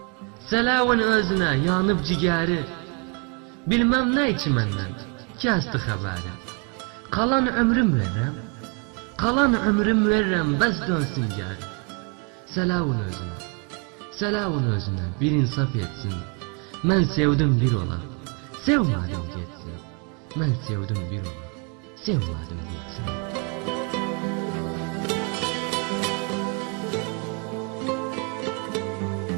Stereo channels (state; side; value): quieter; left; 33.9 dB